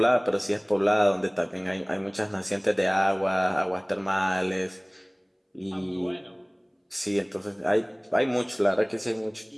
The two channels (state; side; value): identical; both; correlation 1.00